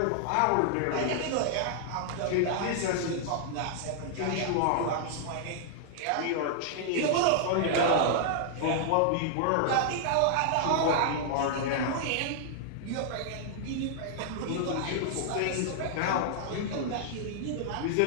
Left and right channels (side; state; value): both; different; correlation -0.01